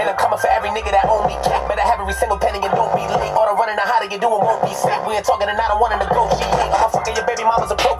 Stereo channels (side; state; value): both; identical; correlation 1.00